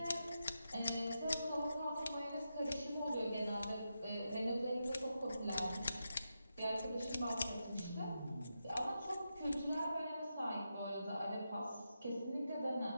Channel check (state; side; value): inverted; both; correlation -0.87